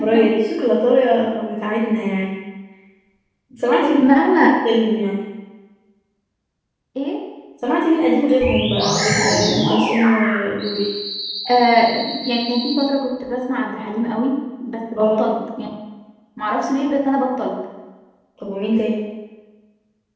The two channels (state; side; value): identical; both; correlation 1.00